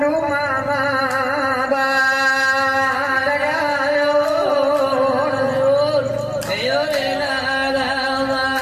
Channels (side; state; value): both; identical; correlation 1.00